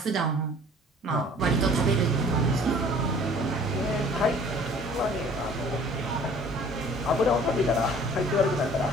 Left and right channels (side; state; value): both; normal; correlation 0.51